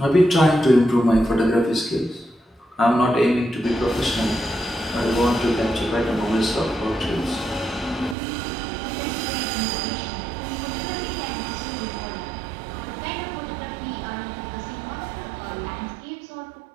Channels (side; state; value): left; drops out; at 8.2 s